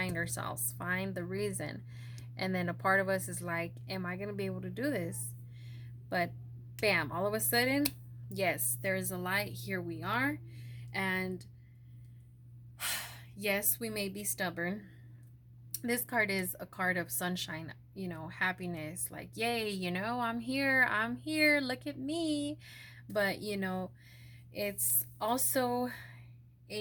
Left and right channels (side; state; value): both; identical; correlation 1.00